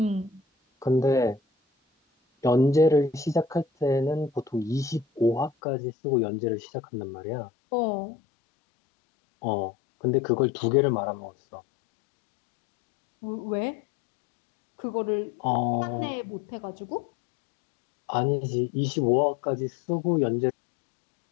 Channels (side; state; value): right; drops out; at 5.5 s